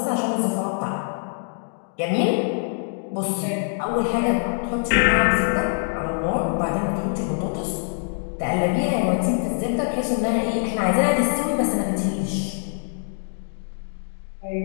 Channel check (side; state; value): right; silent; digital silence